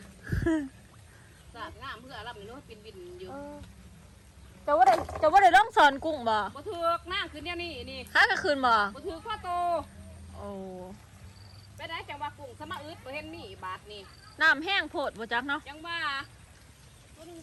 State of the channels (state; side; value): identical; both; correlation 1.00